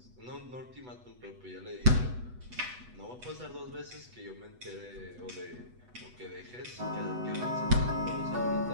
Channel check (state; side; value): late; left; 8.1 ms